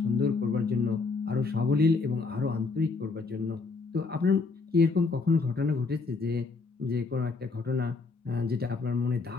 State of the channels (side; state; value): right; quieter; 4.2 dB